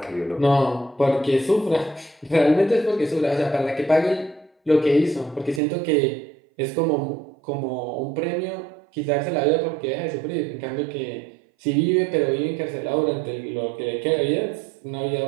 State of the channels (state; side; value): drops out; left; at 5.6 s